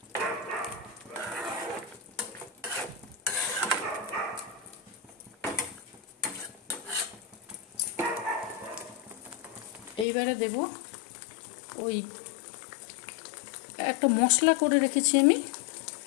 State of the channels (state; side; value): drops out; right; at 10.1 s